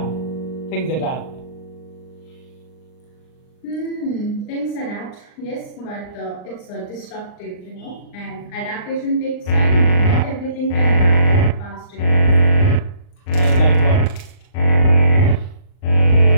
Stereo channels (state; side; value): late; right; 39 ms